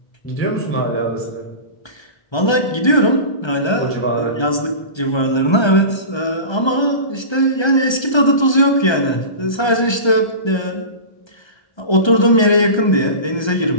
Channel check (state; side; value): late; right; 1.3 ms